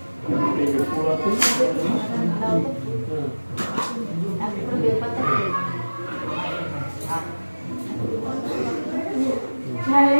এই যে ফুল আছে হ্যাঁ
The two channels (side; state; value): both; inverted; correlation -1.00